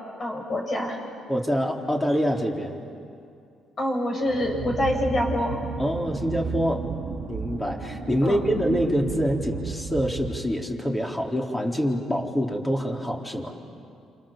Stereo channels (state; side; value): normal; both; correlation 0.88